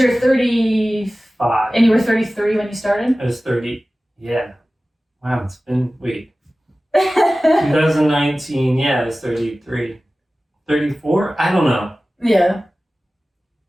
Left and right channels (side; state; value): both; normal; correlation 0.96